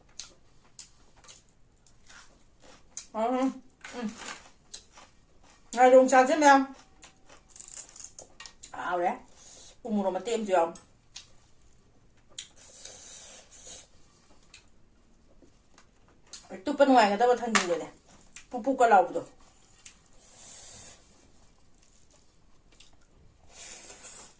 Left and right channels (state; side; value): identical; both; correlation 1.00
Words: Ngay dùng trà chứ em ảo đấy cùng một mà tiêm chưa tụi bên ngoài người ta có thân gì rồi này pu pu cả lầu rồi